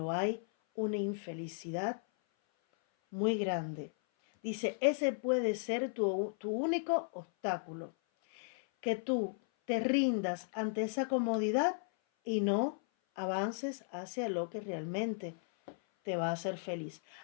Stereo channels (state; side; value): silent; right; 54 dB below the other